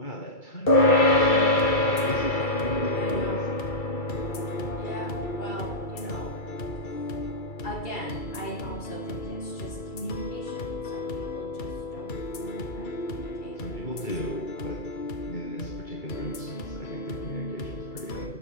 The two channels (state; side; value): late; right; 2.3 ms